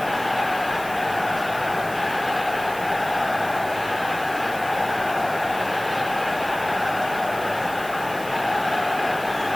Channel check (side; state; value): right; noise; hiss, 15 dB below the sound